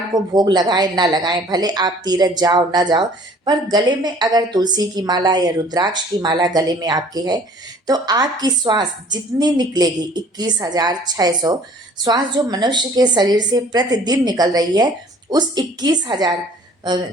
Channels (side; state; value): both; normal; correlation 0.53